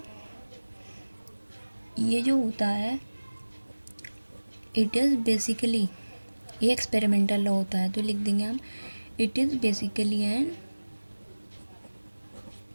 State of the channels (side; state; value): both; inverted; correlation -1.00